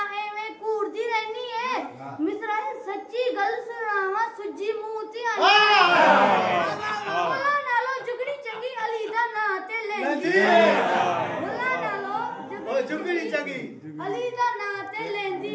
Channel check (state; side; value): identical; both; correlation 1.00